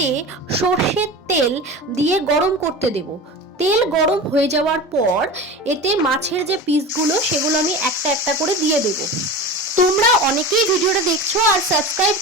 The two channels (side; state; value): both; normal; correlation 0.30